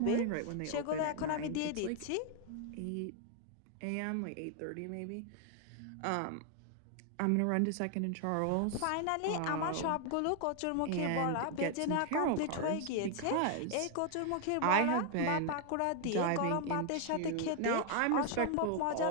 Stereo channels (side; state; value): both; different; correlation 0.01